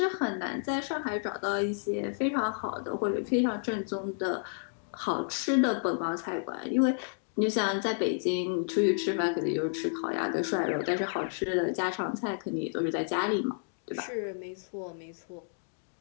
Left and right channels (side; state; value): right; silent; digital silence